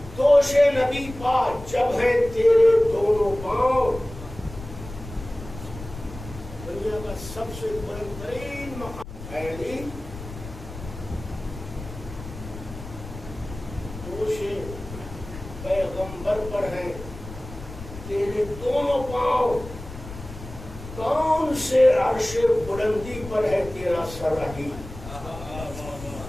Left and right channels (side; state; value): left; noise; rumble, 13 dB below the sound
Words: دوش نبی پا جب ہے تیرے دونوں پاؤں. دنیا کا سب سے بلند ترین مقام ہے علی. دوش پیغمبر پر ہے تیرے دونوں پاؤں. کون سے عرش بلندی پر ہے تیرا سر علی.